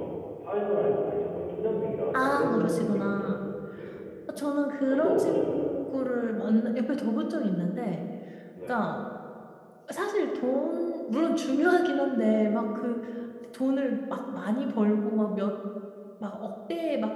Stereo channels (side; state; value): both; identical; correlation 1.00